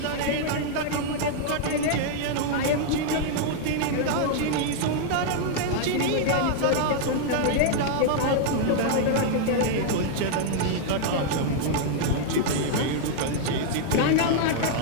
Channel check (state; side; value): different; both; correlation -0.01